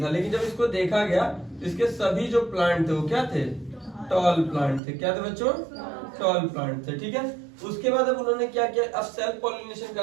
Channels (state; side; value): drops out; left; at 4.8 s